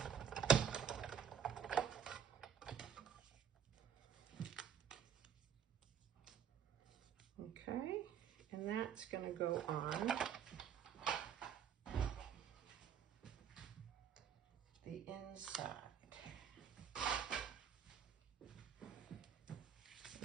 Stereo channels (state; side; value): quieter; left; 8.3 dB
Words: Okay, and that's going to go on the inside.